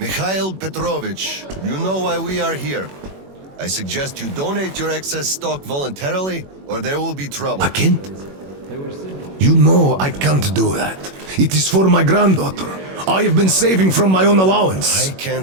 Petrovich, you know why we are here. I suggest you donate your excess stock voluntarily, or there will be trouble. I can't. You know I can't do that. It is for my granddaughter. I have been saving from my own allowance. I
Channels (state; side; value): late; left; 21 ms